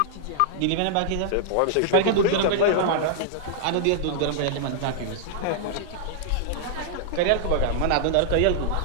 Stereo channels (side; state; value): both; different; correlation -0.01